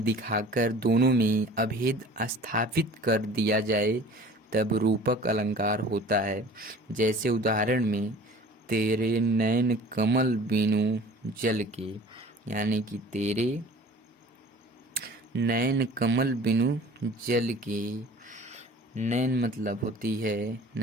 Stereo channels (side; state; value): both; normal; correlation 0.45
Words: दिखाकर दोनों में अभेद स्थापित कर दिया जाए तब रूपक अलंकार होता है। जैसे उदाहरण में, तेरे नैन कमल बिनु जल के, यानी कि तेरे नैन कमल बिनु जल के। नैन मतलब होती है,